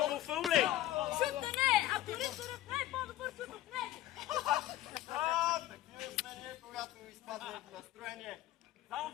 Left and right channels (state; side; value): quieter; right; 14.5 dB